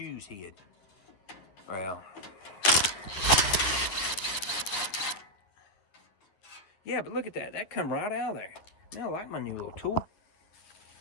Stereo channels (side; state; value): right; late; 10 ms